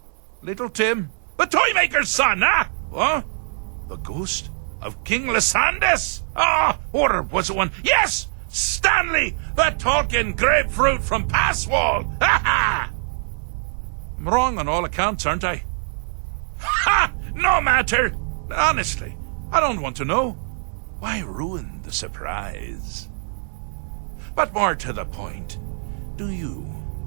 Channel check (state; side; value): silent; left; 64 dB below the other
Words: Little Tim. The Toymaker's son, What? The ghost of King Lysandas? Or was it one? Yes! Stanley, the talking grapefruit from Passwall. I'm wrong on all accounts, aren't I? No matter. Honestly, I don't want to know. Why ruin the surprise? But more to the point, do you,